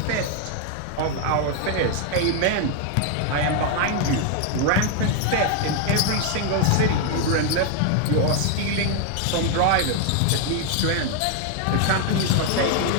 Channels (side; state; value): both; different; correlation 0.00